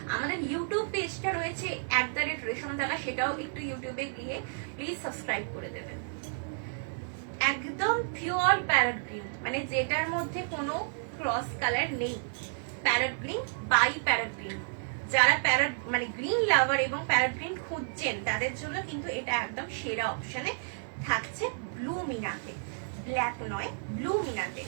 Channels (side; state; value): left; silent; digital silence